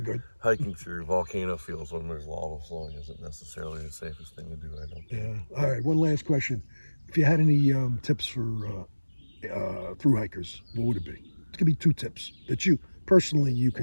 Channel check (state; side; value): inverted; both; correlation -1.00